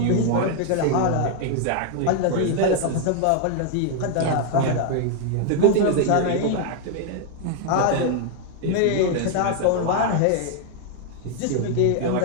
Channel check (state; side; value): different; both; correlation 0.00